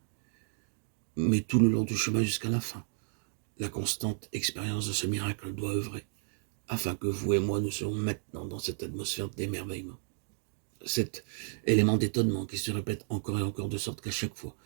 Mais tout le long du chemin jusqu'à la fin, la constante expérience de ce miracle doit œuvrer, afin que vous et moi nous soyons maintenant dans cette atmosphère d'émerveillement. Cet élément d'étonnement qui se répète encore et encore de sorte qu'à chaque fois,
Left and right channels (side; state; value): left; silent; 56 dB below the other